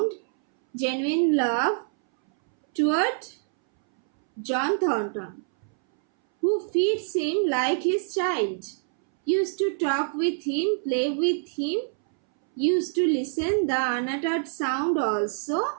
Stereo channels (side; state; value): left; silent; 61 dB below the other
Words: genuine love toward John Thornton, who feeds him like his child, used to talk with him, play with him, used to listen the unuttered sound